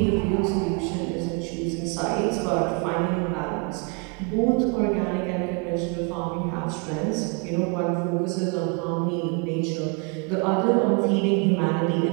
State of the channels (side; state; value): left; quieter; 33.7 dB